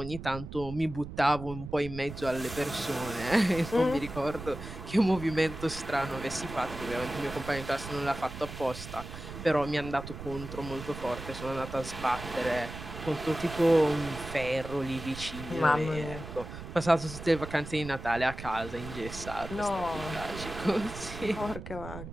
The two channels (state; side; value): noise; right; rumble, 11 dB below the sound